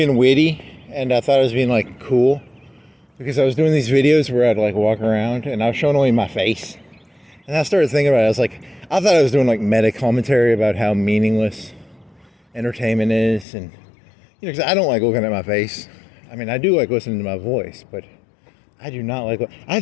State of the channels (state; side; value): drops out; right; at 13.5 s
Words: witty, and I thought I was being like cool, because I was doing these videos where I'd like walk around and I was showing only my face. And I started thinking about it. I thought I was doing like meta commentary about how meaningless entertainment is, and because I don't like looking at my face. I mean, I do like listening to my voice, but I do not like. I